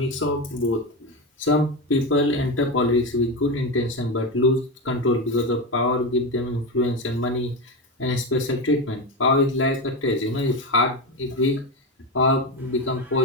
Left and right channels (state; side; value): normal; both; correlation 0.16